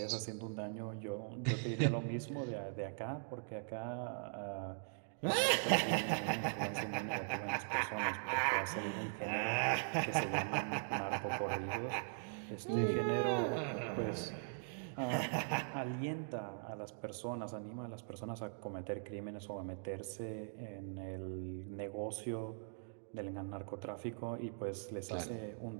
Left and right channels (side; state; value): left; silent; digital silence